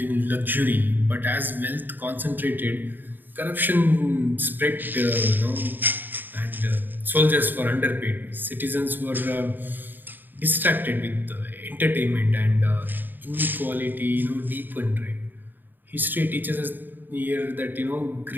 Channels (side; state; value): left; late; 0.091 ms